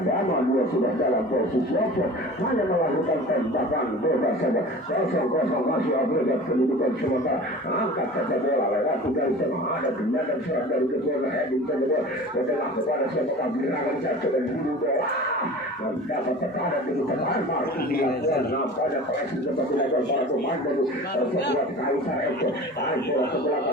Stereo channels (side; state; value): both; normal; correlation 0.39